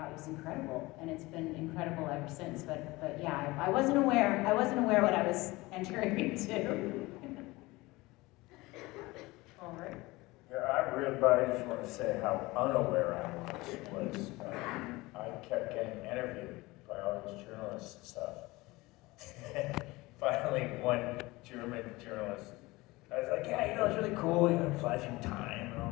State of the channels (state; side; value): quieter; right; 21.3 dB